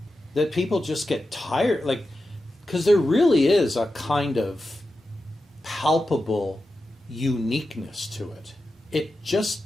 that people just get tired. Like, because there really is a kind of palpable uniqueness to it. It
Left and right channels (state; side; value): normal; both; correlation 0.91